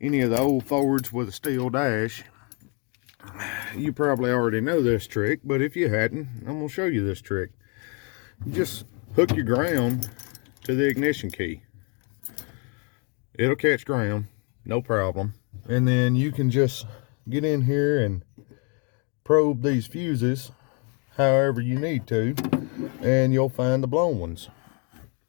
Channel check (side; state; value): right; quieter; 35.6 dB